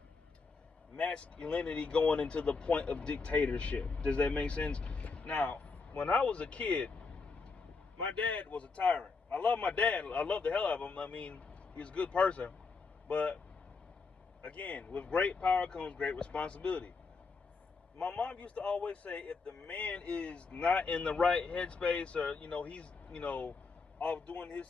masculinity going into the point of dictatorship. Does that make sense? Now, when I was a kid, my dad was a tyrant. I love my dad. I love the hell out of him. I mean, he's a good person. But again, with great power comes great responsibility. My mom used to always say, if the man is not in the right headspace, or he's off doing his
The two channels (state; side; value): quieter; right; 4.5 dB